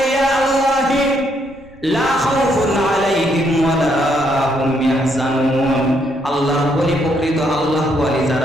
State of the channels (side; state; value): right; noise; rumble, 25 dB below the sound